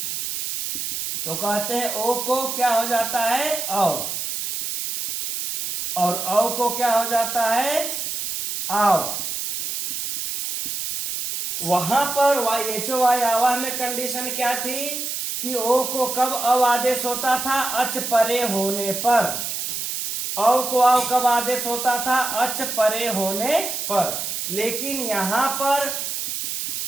तो कहते हैं ओ को क्या हो जाता है, औ, और औ को क्या हो जाता है, आओ। वहां पर एचो वाय आवाह में कंडीशन क्या थी कि ओ को कब अव आदेश होता था, अच परे होने पर। औ को आव कब आदेश होता था, अच परे होने पर। लेकिन यहां पर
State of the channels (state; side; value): noise; right; hiss, 3 dB below the sound